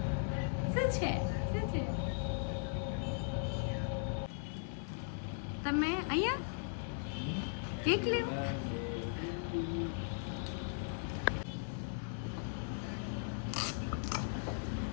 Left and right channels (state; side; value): silent; right; digital silence